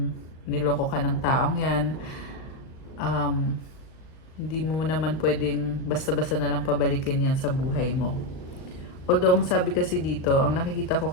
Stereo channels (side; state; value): right; late; 38 ms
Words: niloko ka ng taong yan. Hindi mo naman pwedeng basta-basta na lang pabalikin yan sa buhay mo. Although, ang sabi kasi dito, ang nakikita ko